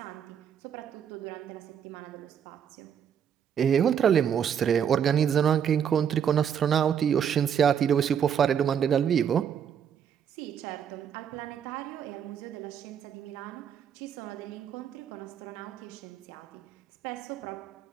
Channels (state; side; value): quieter; left; 8.4 dB